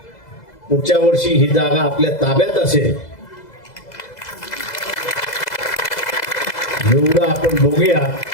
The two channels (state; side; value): late; right; 2.0 ms